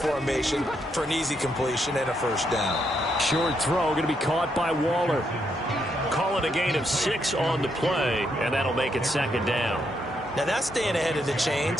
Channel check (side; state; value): both; normal; correlation 0.78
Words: for an easy completion and a first down. Short throw going to be caught by Waller. Call it a gain of 6 on the play, and that'll make it 2nd down. Now that's staying ahead of the